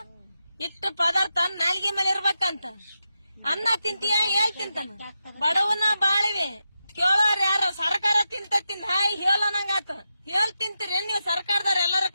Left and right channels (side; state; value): both; inverted; correlation -0.88